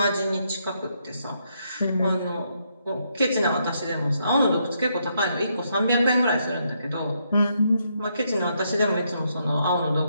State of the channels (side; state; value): both; inverted; correlation -0.77